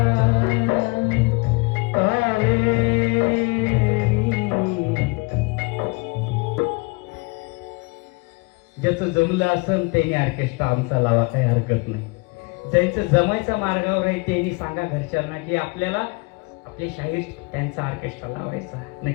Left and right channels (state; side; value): quieter; right; 27.7 dB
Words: कावेरी. ज्याचं जमलं असन त्याने ऑर्केस्ट्रा आमचा लावा, काही हरकत नाही. ज्यांचं जमायचा मार्गावर आहे त्यांनी सांगा घरच्यांना की आपल्याला आपले शाहीर त्यांचा ऑर्केस्ट्रा लावायचा.